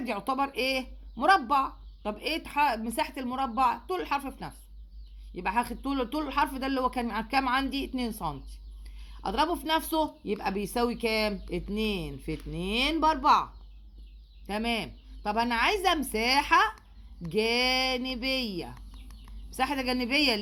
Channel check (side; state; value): both; identical; correlation 1.00